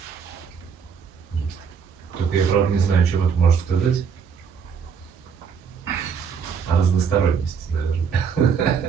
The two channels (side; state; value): left; quieter; 6.5 dB